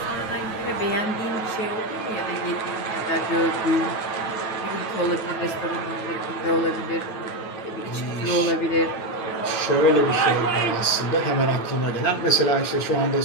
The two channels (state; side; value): late; right; 9.4 ms